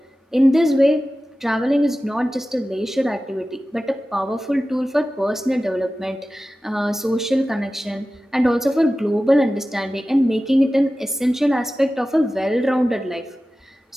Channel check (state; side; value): normal; both; correlation 0.95